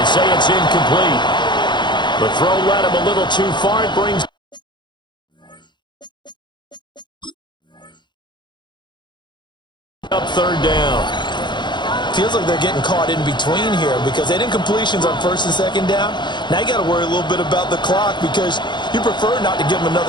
say it's incomplete. The throw led him a little too far. It brings third down. Feels like they're getting caught in between here because they didn't completions on first and second down. Now you got to worry a little bit about the clock because you prefer not to give them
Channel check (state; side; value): late; right; 0.22 ms